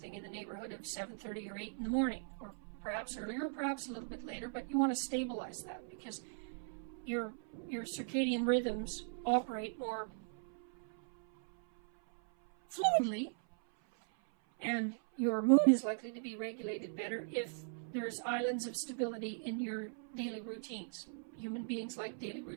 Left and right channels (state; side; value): silent; left; 52 dB below the other